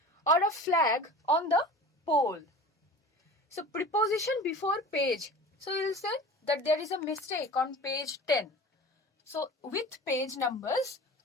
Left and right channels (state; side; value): normal; both; correlation 0.38